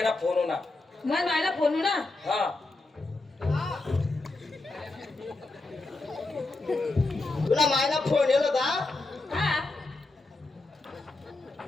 फोन होणार मग मला फोन ना हा तुला मायला फोन येलो का हा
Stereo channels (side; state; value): right; quieter; 3.1 dB